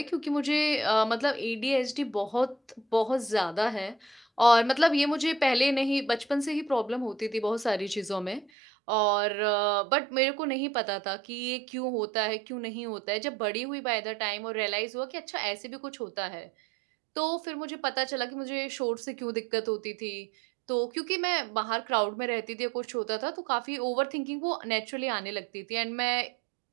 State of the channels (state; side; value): drops out; left; at 8.5 s